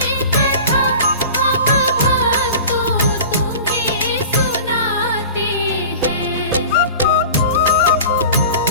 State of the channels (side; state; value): both; inverted; correlation -0.37